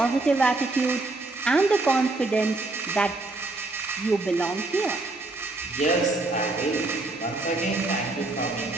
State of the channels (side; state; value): left; quieter; 3.1 dB